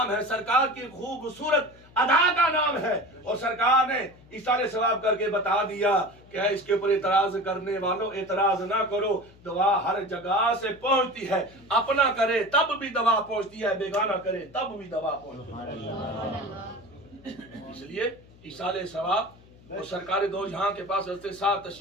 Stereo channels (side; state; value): left; noise; hum, 25 dB below the sound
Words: है, सरकार की खूबसूरत अदा का नाम है। और सरकार ने इशारे सवाब करके बता दिया कि इसके ऊपर एतराज करने वालों एतराज ना करो, दवा हर जगह से पहुंचती है, अपना करे तब भी दवा पहुंचती है, बेगाना करे तब भी दवा पहुंचती है। इसलिए इशारे सवाब और सरकार दो जहां के पास हज़रत साहब